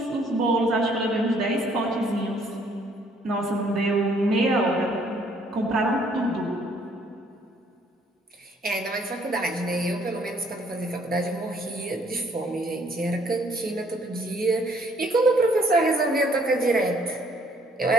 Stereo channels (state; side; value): normal; both; correlation 0.63